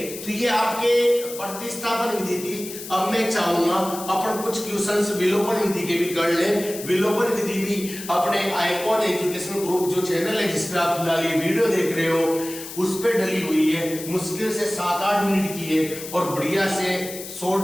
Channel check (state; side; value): noise; left; hiss, 11 dB below the sound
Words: तो ये आपके प्रतिस्थापन विधि थी। अब मैं चाहूंगा अपन कुछ क्वेश्चंस विलोपन विधि के भी कर लें। विलोपन विधि भी अपने आइकॉन एजुकेशन ग्रुप जो चैनल है जिस पे आप फिलहाल ये वीडियो देख रहे हो उस पे डली हुई है, मुश्किल से 7-8 मिनट की है और बढ़िया से